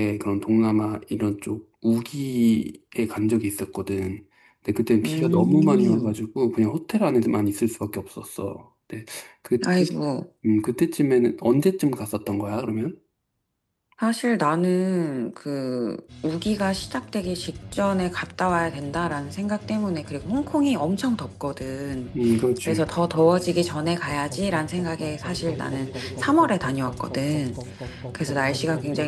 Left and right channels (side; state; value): both; identical; correlation 1.00